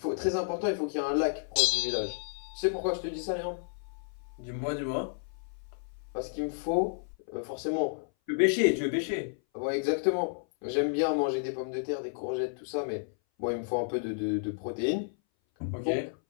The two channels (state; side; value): silent; right; 57 dB below the other